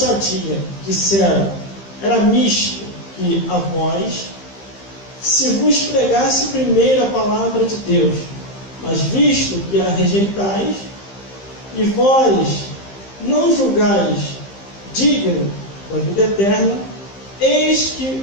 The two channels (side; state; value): right; late; 15 ms